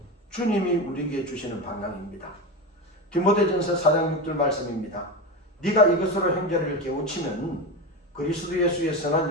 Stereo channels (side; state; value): both; normal; correlation 0.20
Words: 주님이 우리에게 주시는 방향입니다. 디모데전서 4장 6절 말씀입니다. 네가 이것으로 형제를 깨우치면 그리스도 예수의